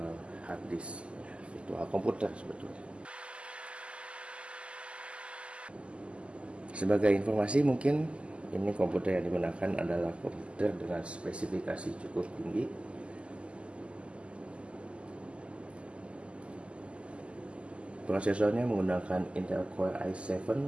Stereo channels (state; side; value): late; left; 0.054 ms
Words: hard disk, virtual komputer sebetulnya. Sebagai informasi mungkin ini komputer yang digunakan adalah komputer dengan spesifikasi cukup tinggi. Prosesornya menggunakan Intel Core i7